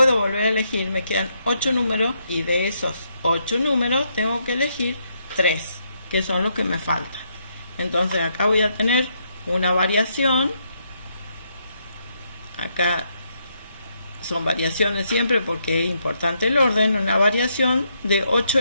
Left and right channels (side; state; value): both; inverted; correlation -0.77